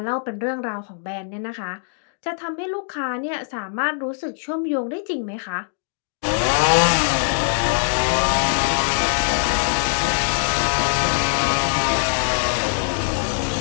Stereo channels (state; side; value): silent; right; 64 dB below the other